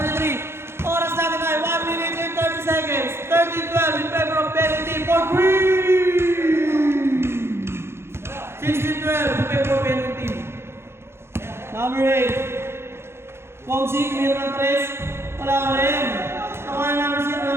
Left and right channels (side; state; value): left; late; 0.12 ms